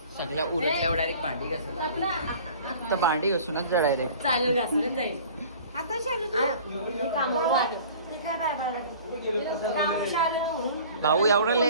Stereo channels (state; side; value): inverted; both; correlation -0.46